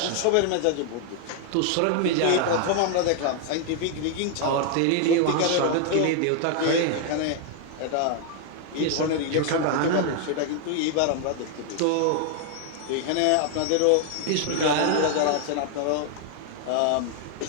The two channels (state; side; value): different; both; correlation 0.00